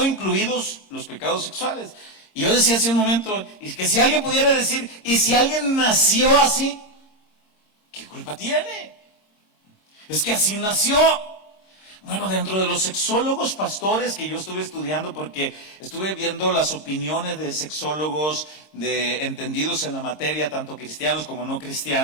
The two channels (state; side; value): late; right; 26 ms